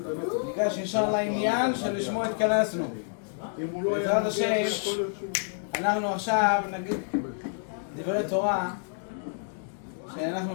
ניגש ישר לעניין שלשמו התכנסנו. בעזרת השם אנחנו עכשיו נגיד דברי תורה שאנחנו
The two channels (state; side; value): silent; right; digital silence